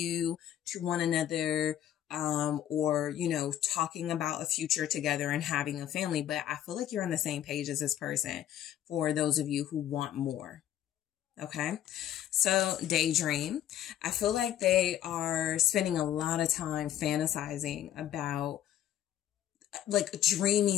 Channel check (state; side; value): quieter; right; 11.3 dB